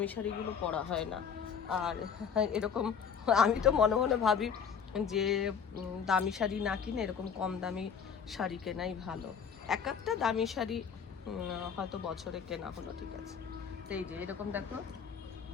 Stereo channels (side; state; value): right; quieter; 6.9 dB